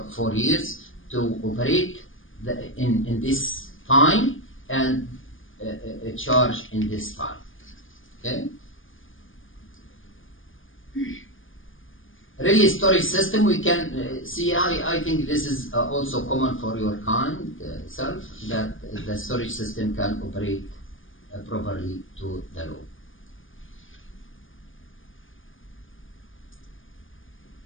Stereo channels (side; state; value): right; late; 0.58 ms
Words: years to operate in this time and charge in this time. Okay. Really, storage system we can see. I think this is also common for your kind self, that the storage system can operate properly to the load.